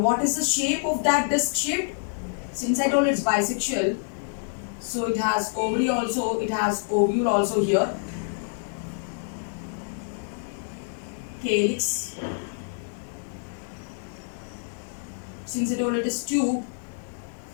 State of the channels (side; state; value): right; silent; digital silence